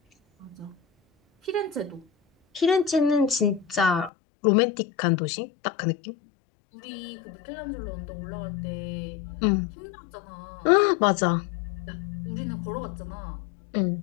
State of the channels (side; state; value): right; drops out; at 4.1 s